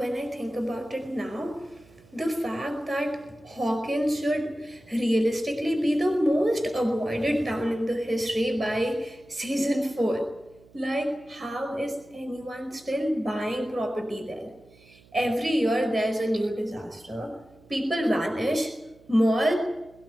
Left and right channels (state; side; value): noise; right; hum, 27 dB below the sound